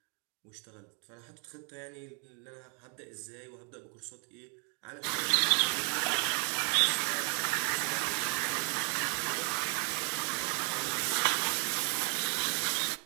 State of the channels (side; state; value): left; quieter; 39.5 dB